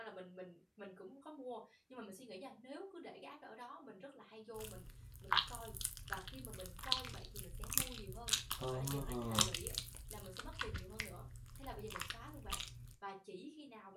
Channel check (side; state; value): both; identical; correlation 1.00